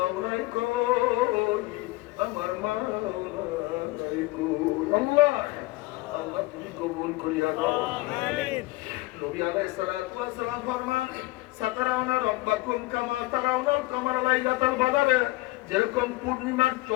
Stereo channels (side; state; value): right; quieter; 20.9 dB